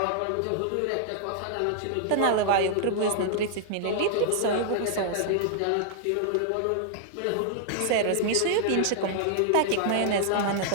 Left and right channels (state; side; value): different; both; correlation -0.01